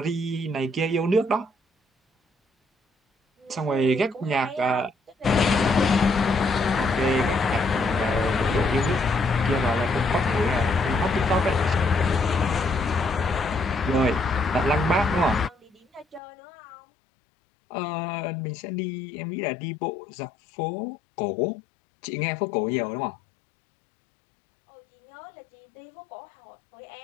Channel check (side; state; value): right; drops out; at 16.2 s